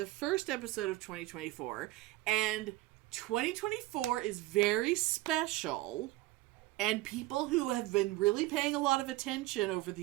first episode of 2024. And 2024 is very special, and people who have been really paying a lot of attention over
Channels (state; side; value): quieter; left; 17.9 dB